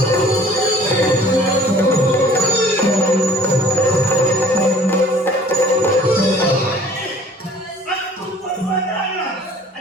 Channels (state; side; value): normal; both; correlation 0.51